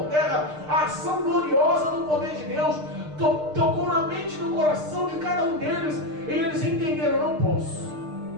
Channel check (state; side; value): late; left; 6.6 ms